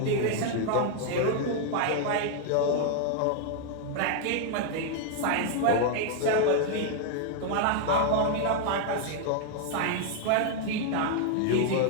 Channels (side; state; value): both; different; correlation -0.01